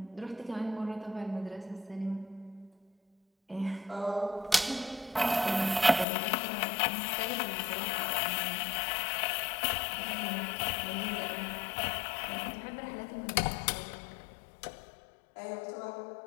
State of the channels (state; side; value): drops out; right; at 6.1 s